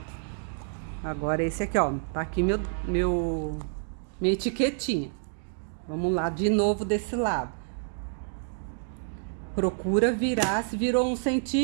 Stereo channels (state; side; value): silent; left; digital silence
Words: Agora esse aqui, ó. Tá aqui minha etiquetinha. Vamos lá de novo desse lado. Procura virar. Se virou 1